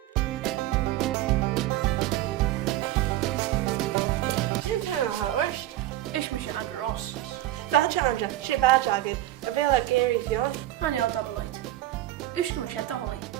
Hurst. Is me Andrew Ross. Badge Andra, she badge agad, a bit like Gary Fion. Honey, I'll double light. Uske me shed the holly.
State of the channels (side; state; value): left; quieter; 14.8 dB